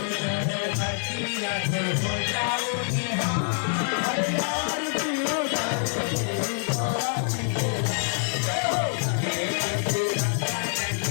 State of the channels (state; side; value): silent; right; 61 dB below the other